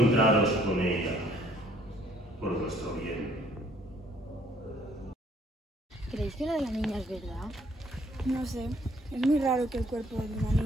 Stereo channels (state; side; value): normal; both; correlation 0.63